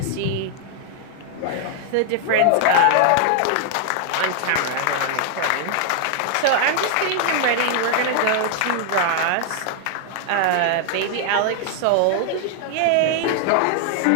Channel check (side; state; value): both; different; correlation 0.00